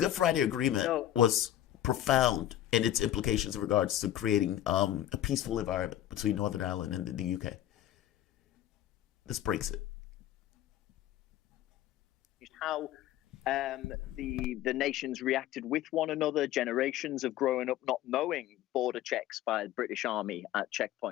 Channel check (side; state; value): right; quieter; 12.4 dB